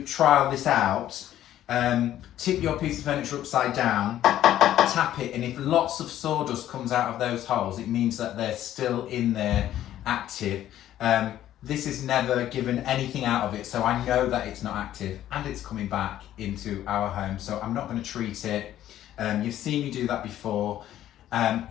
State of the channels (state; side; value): quieter; right; 12.4 dB